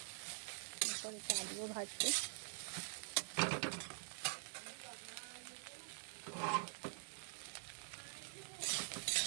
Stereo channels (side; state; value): left; silent; digital silence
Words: এরপরে আলুও ভাজবো।